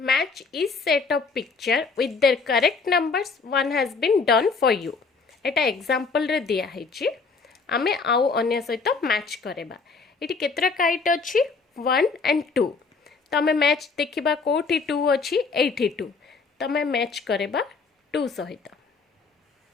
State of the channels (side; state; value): right; quieter; 4.6 dB